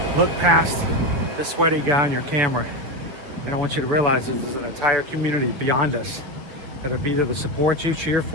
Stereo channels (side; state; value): left; late; 6.9 ms